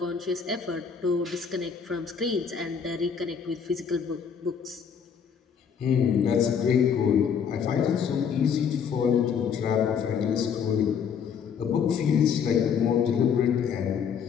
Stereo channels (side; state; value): right; quieter; 7.1 dB